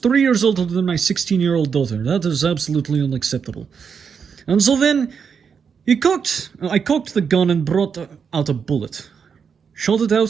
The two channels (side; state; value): left; quieter; 6.5 dB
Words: years older than my 16-year-old daughter. That is absolutely unacceptable. And so then, I cocked the gun and brought out a bullet. Shot it